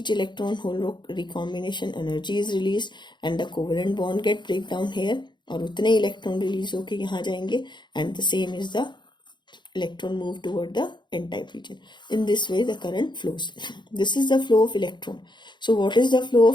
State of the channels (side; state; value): right; late; 0.22 ms